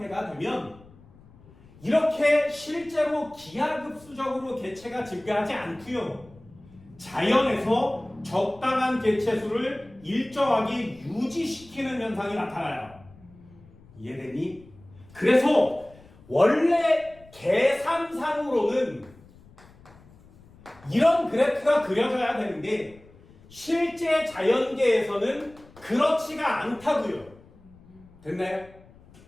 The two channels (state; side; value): noise; left; rumble, 25 dB below the sound